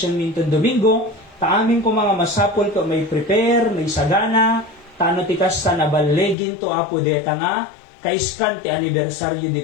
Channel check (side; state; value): right; drops out; at 6.4 s